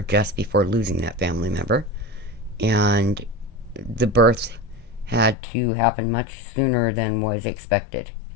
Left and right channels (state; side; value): drops out; right; at 5.4 s